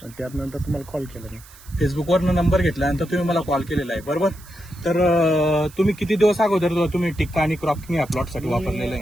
आणि त्यानंतर तुम्हाला कॉल केला मी. फेसबुकवरनं नंबर घेतल्यानंतर तुम्ही मला कॉल केलेला आहे, बरोबर? तर तुम्ही किती दिवस अगोदर तुम्ही टिक्का आणि क्रॉपिंग या प्लॉटसाठी वापरलेलं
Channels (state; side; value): noise; right; hiss, 22 dB below the sound